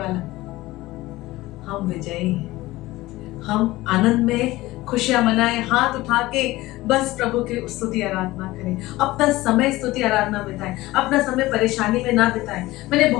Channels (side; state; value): right; quieter; 18.4 dB